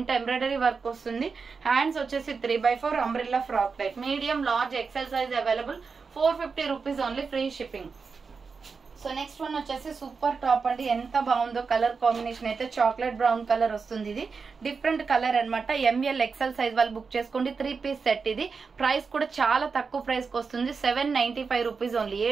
ఎంబ్రాయిడరీ వర్క్ వస్తుంది. హ్యాండ్స్ వచ్చేసి 3/4 umbrella frock type. Medium large XL size available. 450 rupees only, free shipping. So next one వచ్చేసి సూపర్ టాప్ అండి. ఎంత బాగుందో కలర్ కాంబినేషన్ అయితే. చాక్లెట్ బ్రౌన్ కలర్ వస్తుంది. ఇది డిఫరెంట్ కలర్ అనమాట. ML XL సైజ్ వాళ్ళు బుక్ చేసుకోండి. 3 పీస్ సెట్. ఇది ప్రైస్ కూడా చాలా తక్కువ ప్రైస్ కి వస్తుంది. 795 రూపీస్ ఓన్లీ,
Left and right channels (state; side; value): quieter; left; 5.1 dB